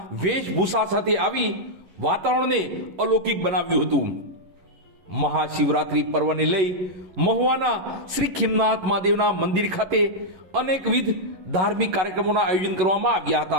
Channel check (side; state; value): left; late; 11 ms